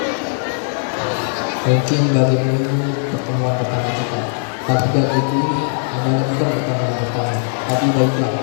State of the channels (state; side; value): silent; right; digital silence